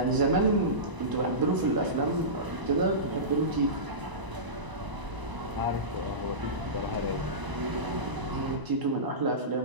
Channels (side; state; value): left; late; 1.0 ms